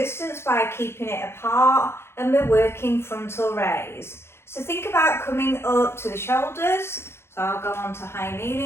by keeping it apart, and we're working frontal raise. So think about coming up to the shoulders. So I'll go on to high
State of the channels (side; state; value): right; late; 0.12 ms